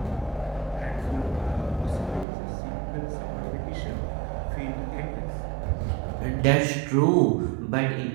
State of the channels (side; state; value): left; drops out; at 2.2 s